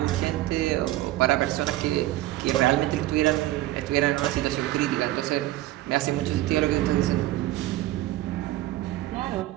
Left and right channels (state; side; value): quieter; left; 15.9 dB